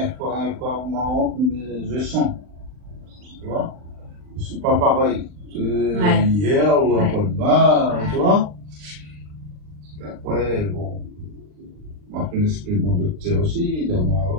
fois au moment, je sens. Tu vois? C'est pas pareil. Hier ou après-demain, tu vois? Et après, bon. Moi, je l'esprit de mon docteur aussi. Donc,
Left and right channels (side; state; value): left; late; 39 ms